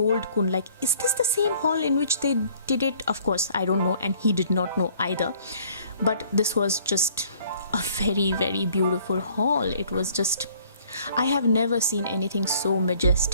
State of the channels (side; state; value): both; inverted; correlation -0.58